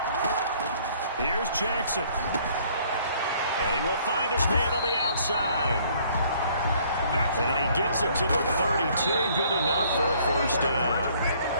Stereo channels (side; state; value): both; inverted; correlation -0.60